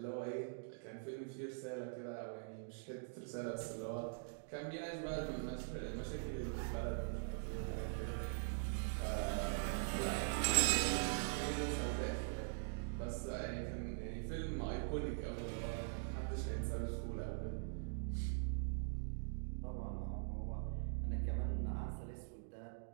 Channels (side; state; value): left; silent; digital silence